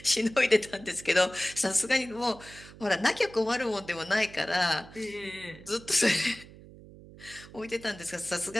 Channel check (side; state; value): right; noise; hum, 19 dB below the sound